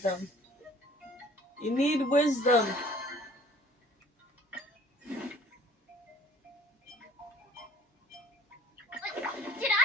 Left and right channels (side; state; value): both; normal; correlation 0.53